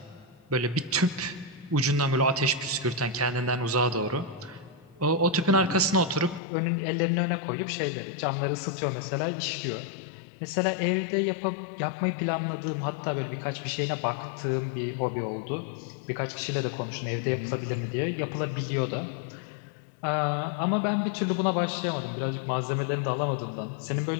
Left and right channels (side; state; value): right; drops out; at 6.4 s